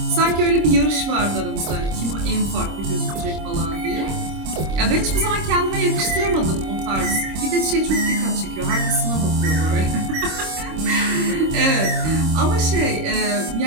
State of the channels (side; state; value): left; late; 26 ms